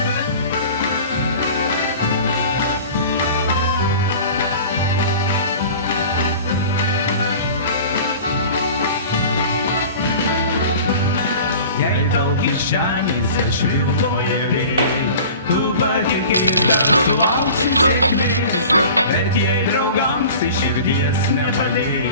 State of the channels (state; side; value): inverted; both; correlation -0.40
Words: Jei tau kišenėse švilpauja vėjai, tu patikėk, kad sulauksi sėkmės, bet jei draugams iš širdies